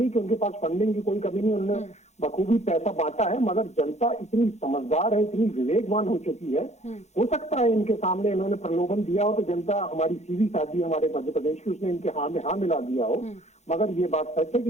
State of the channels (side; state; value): right; late; 0.33 ms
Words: है कि उनके पास फंडिंग की कोई कमी नहीं, उन्होंने बखूबी पैसा बांटा है, मगर जनता इतनी समझदार है, इतनी विवेकवान हो चुकी है। हो सकता है इनके सामने इन्होंने प्रलोभन दिया हो तो जनता, हमारी सीधी शादी हमारे मध्य प्रदेश की, उसने इनके हाँ में हाँ मिला दिया हो। मगर ये बात सच है